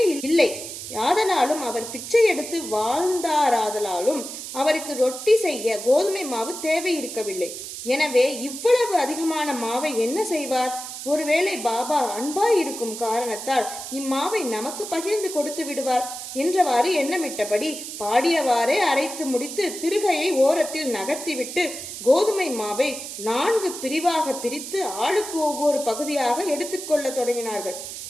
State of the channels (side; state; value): right; noise; hiss, 9 dB below the sound